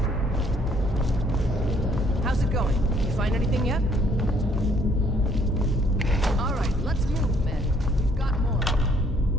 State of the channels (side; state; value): both; normal; correlation 0.64